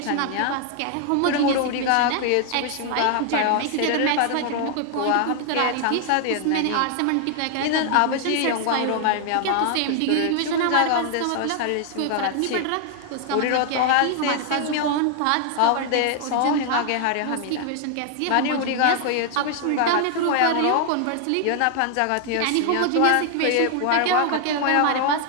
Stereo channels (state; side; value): different; both; correlation 0.00